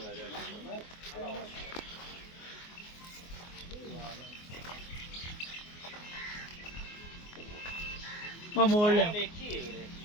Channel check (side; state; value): right; late; 24 ms